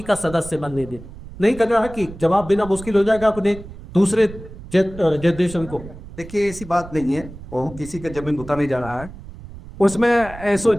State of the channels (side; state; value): right; noise; rumble, 15 dB below the sound